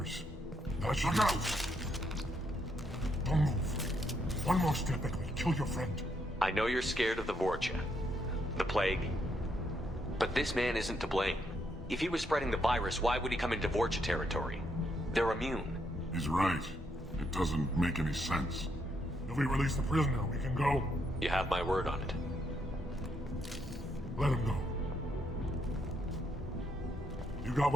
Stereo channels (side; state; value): both; normal; correlation 0.76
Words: That should out. Don't move. One more step and we'll kill your friend. I know you're scared of the Vorcha, the plague, but this man isn't to blame. If he was spreading the virus, why would he come into Vorcha territory? They're immune. He's right. It doesn't make any sense. If we release the prisoner, we can go. You have my word on it. Let him go. You got